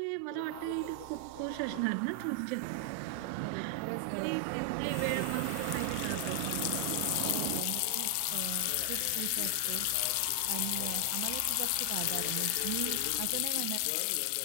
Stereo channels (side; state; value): both; different; correlation 0.00